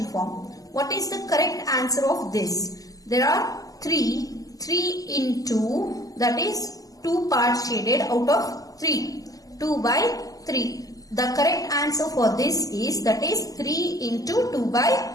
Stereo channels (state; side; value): late; right; 0.17 ms